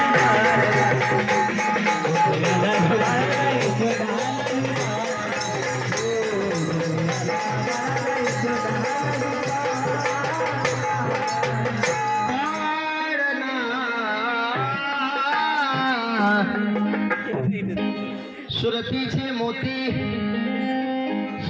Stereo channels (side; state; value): both; identical; correlation 1.00